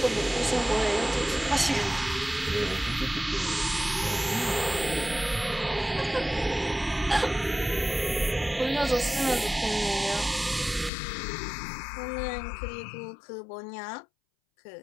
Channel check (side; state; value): right; drops out; at 10.9 s